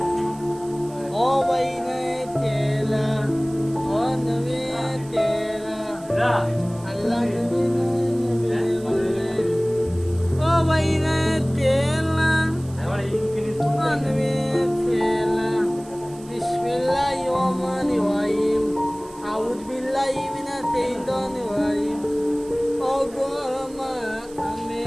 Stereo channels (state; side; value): noise; right; hiss, 23 dB below the sound